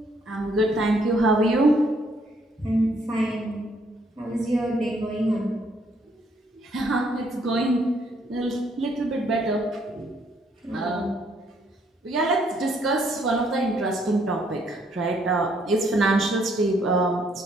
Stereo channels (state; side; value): normal; both; correlation 0.69